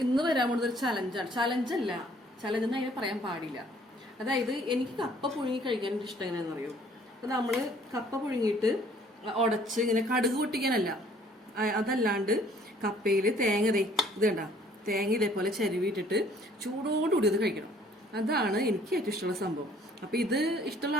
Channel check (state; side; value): normal; both; correlation 0.59